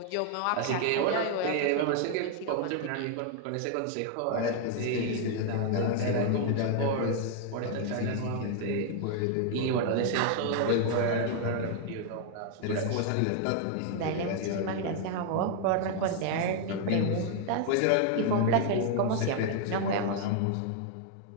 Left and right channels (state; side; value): different; both; correlation 0.00